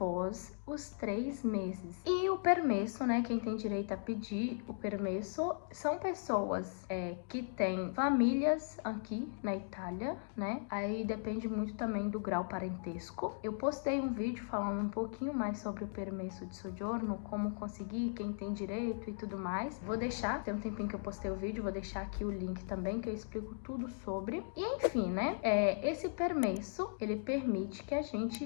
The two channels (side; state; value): right; silent; digital silence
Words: os 3 meses. E o permesso, né, quem tem direito a pedir o permesso são pessoas que têm famílias aqui na Itália, né, aí depende muito também do grau parentesco. Eu postei um vídeo falando um pouquinho mais sobre o permesso de soggiorno, como conseguir, quem tem direito e tudo mais. Vou deixar, tem um tempinho que eu postei o vídeo, vou deixar aqui o link também, que eu explico tudo sobre. E enfim, né, esse permesso, ele permite que a gente